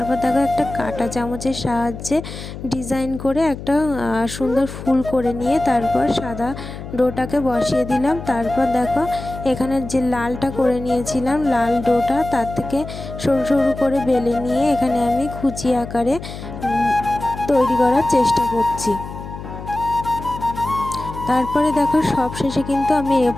দেখো একটা কাঁটা চামচের সাহায্যে ডিজাইন করে একটা সুন্দর ফুল করে নিয়ে তারপর সাদা ডোটাকে বসিয়ে দিলাম। তারপর দেখো এখানে যে লালটা করে নিয়েছিলাম, লাল ডোটা তার থেকে সরু সরু করে বেলে নিয়ে এখানে আমি খুচি আকারে তৈরি করার চেষ্টা করছি। তারপরে দেখো সব শেষে কিন্তু আমি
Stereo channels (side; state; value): left; noise; hum, 11 dB below the sound